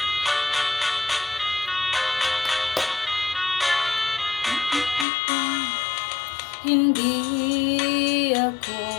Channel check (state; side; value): drops out; right; at 5.1 s